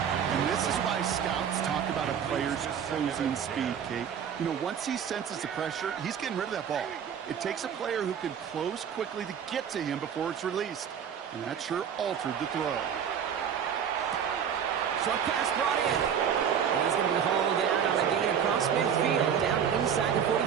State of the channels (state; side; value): quieter; left; 8.1 dB